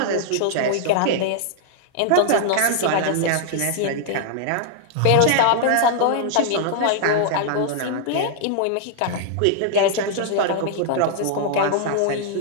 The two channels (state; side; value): different; both; correlation -0.01